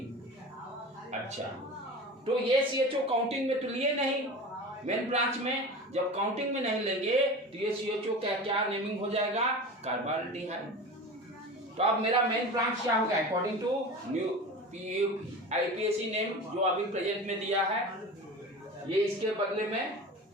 अच्छा, तो ये CHO काउंटिंग में तो लिए नहीं, मेन ब्रांच में जब काउंटिंग में नहीं लेंगे तो ये CHO का क्या नेमिंग हो जाएगा, कार्बाल्डिहाइड। तो अब मेरा मेन ब्रांच क्या होगा, according to new IUPAC name जो अभी प्रेजेंट में दिया है, ये इसके बदले में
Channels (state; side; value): normal; both; correlation 0.32